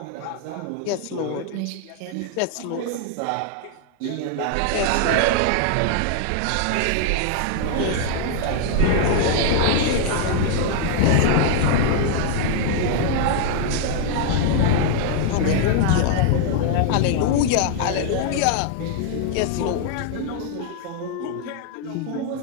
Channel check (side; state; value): both; different; correlation 0.00